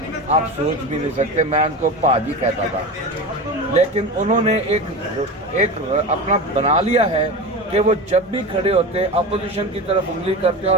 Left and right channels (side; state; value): both; normal; correlation 0.26